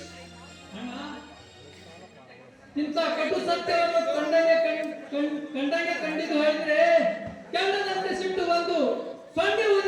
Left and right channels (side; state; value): both; identical; correlation 1.00